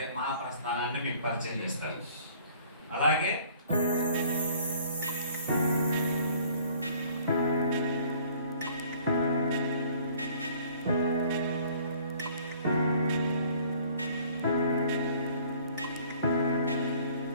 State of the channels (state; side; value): inverted; both; correlation -0.55